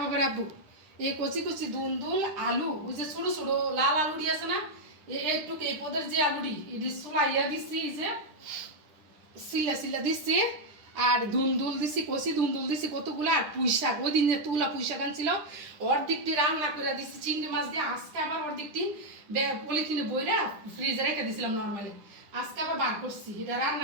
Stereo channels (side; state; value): left; late; 10 ms